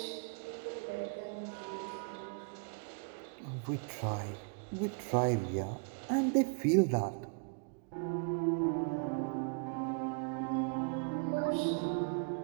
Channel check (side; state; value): left; quieter; 38.8 dB